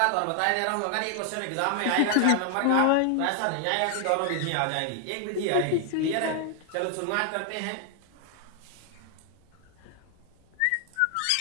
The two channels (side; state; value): both; different; correlation 0.00